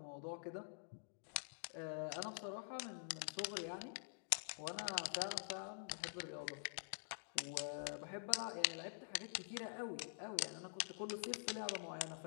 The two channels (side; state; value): right; silent; digital silence